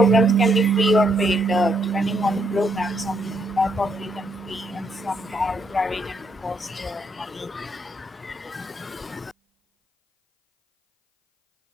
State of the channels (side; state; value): both; normal; correlation 0.75